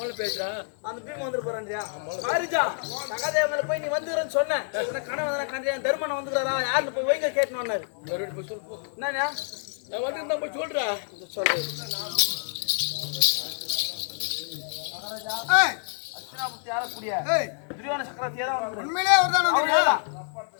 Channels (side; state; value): right; silent; 60 dB below the other